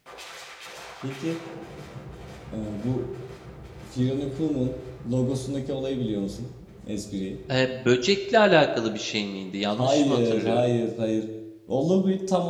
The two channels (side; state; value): both; identical; correlation 1.00